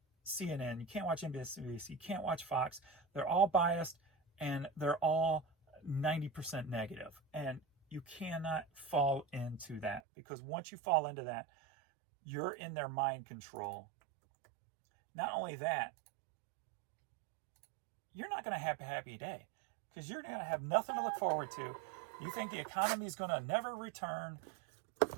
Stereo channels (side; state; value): left; drops out; at 10.0 s